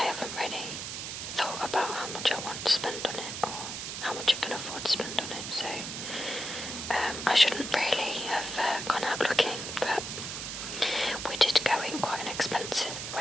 haven't really thought about how much I want to spend on it or how much I can afford to spend on it, so I shouldn't really have gone out looking, but we did go in quite an expensive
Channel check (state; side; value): noise; right; hiss, 6 dB below the sound